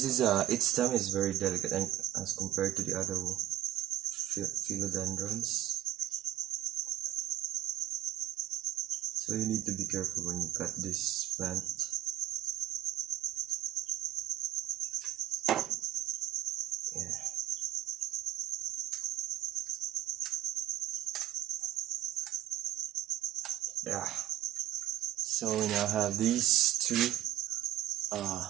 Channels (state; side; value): quieter; left; 13.5 dB